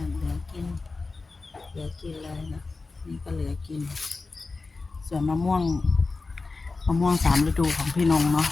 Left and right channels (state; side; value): quieter; right; 3.9 dB